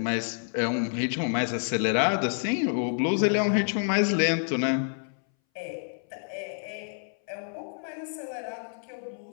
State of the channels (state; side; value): silent; right; 59 dB below the other